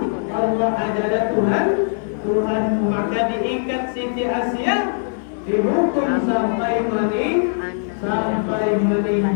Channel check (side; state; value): right; silent; 59 dB below the other